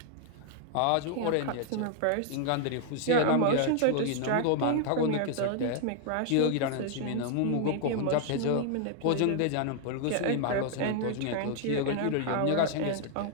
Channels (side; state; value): both; different; correlation 0.00